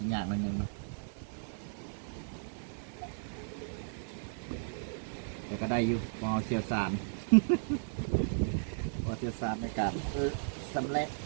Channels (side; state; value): left; silent; digital silence